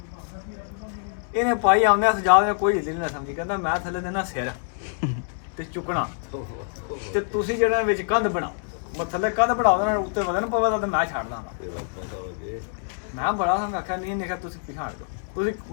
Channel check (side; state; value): right; silent; digital silence